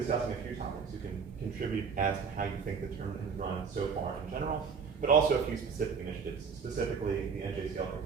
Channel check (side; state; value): left; quieter; 5.9 dB